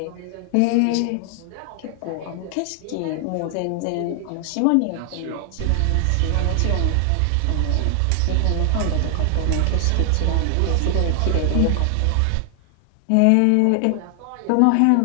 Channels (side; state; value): both; different; correlation 0.00